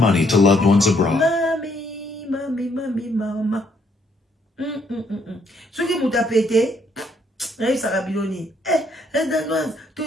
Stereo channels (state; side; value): normal; both; correlation 0.70